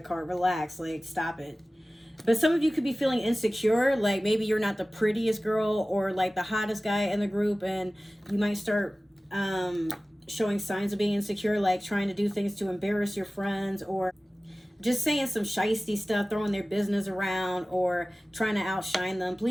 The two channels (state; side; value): normal; both; correlation 0.97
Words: card. Relax. Like, stop it. But some of you could be feeling insecure. Like, maybe you're not the prettiest girl or, like, the hottest guy in the group. And you might start showing signs of being insecure, like trying to do things to embarrass your friends, or just saying some shisty stuff, throwing their business around, or trying to outshine them.